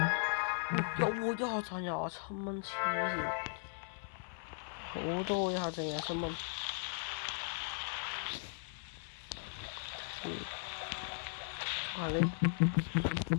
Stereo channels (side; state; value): right; silent; 53 dB below the other